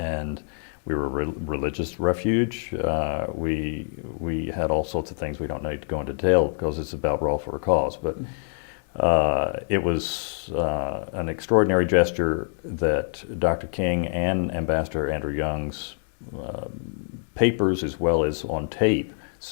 we were a religious refuge. We had all sorts of things we don't need to go into detail because it's about Brawl for a Cause, but it was an extraordinary gesture that Dr. King and Ambassador Andrew Young's papers, as well as on tape,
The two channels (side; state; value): right; silent; digital silence